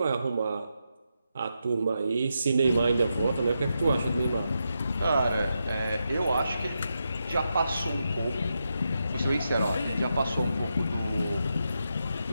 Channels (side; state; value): both; inverted; correlation -0.85